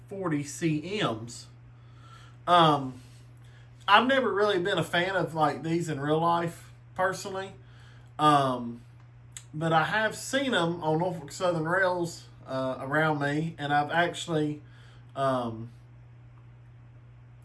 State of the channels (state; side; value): identical; both; correlation 1.00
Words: 40 CMs. I've never really been a fan of like these in real life personally, but I have seen them on Norfolk Southern rails around me, and I've actually